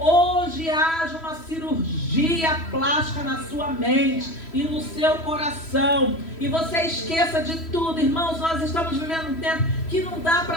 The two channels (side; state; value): right; late; 3.1 ms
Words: haja uma cirurgia plástica na sua mente e no seu coração. E você esqueça de tudo. Irmãos, nós estamos vivendo um tempo que não dá